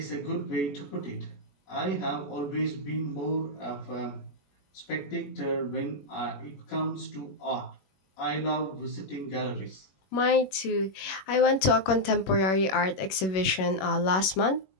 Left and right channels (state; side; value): late; right; 21 ms